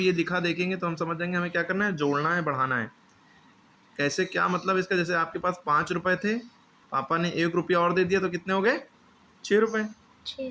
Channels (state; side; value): identical; both; correlation 1.00